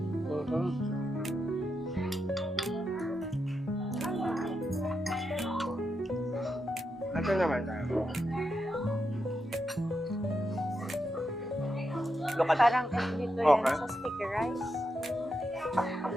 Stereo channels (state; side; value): normal; both; correlation 0.85